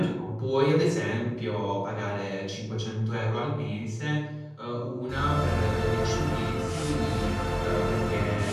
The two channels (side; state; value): both; identical; correlation 1.00